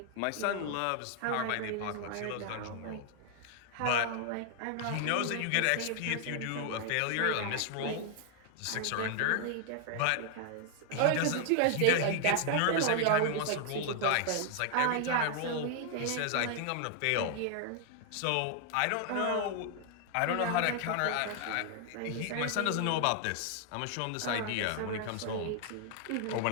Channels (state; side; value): different; both; correlation 0.00